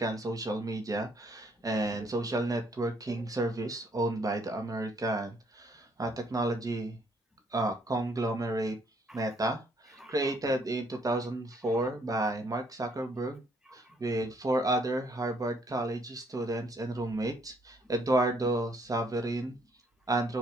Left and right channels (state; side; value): normal; both; correlation 0.67